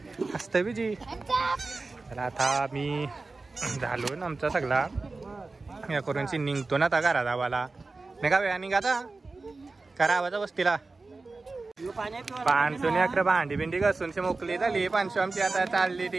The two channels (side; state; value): left; quieter; 3.6 dB